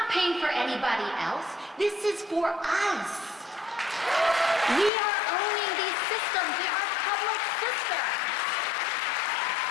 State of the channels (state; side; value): drops out; right; at 4.9 s